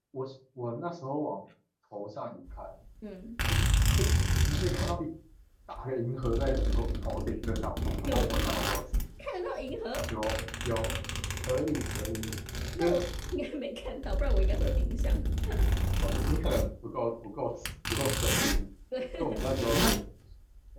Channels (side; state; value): both; identical; correlation 1.00